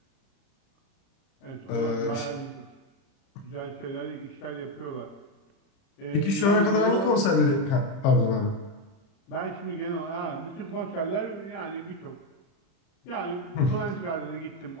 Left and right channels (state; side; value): late; right; 30 ms